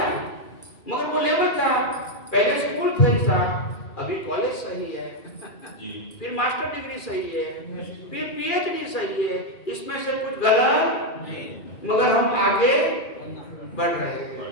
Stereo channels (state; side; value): late; right; 2.4 ms